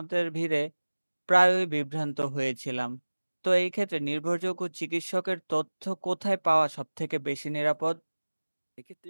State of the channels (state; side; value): inverted; both; correlation -1.00